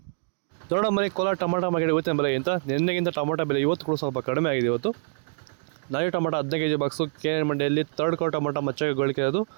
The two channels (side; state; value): left; silent; digital silence